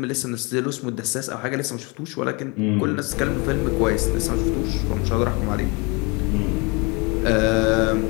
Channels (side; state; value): right; quieter; 28.9 dB